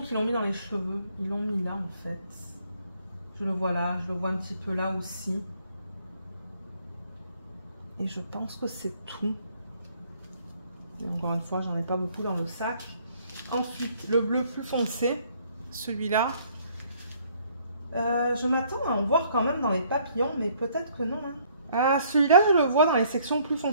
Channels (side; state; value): both; inverted; correlation -0.63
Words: l'ont mis dans les cheveux. Ils l'ont mis là, en fait. Je le vois là, je le vois un petit peu là aussi. Et je pense que c'est tout. Et encore une fois, j'en ai pas beaucoup dans le sac. Ensuite, le bleu plus foncé, celui-là. Je m'attends à en voir quand même dans les papillons, mais peut-être que non. Hein. Ah, celui-là, je le vois dans les sections plus